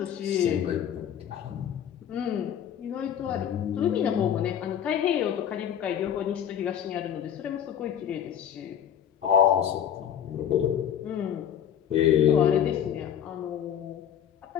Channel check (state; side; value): quieter; right; 9.3 dB